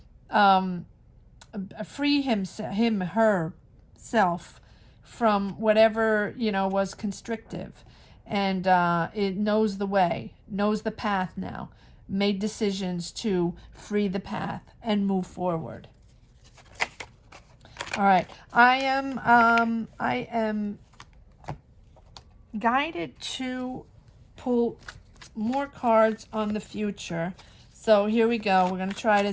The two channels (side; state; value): both; identical; correlation 1.00